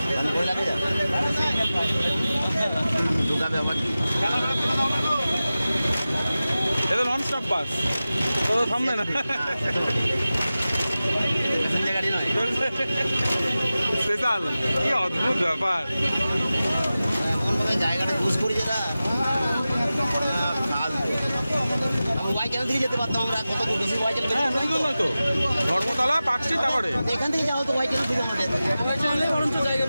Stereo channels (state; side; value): inverted; both; correlation -0.95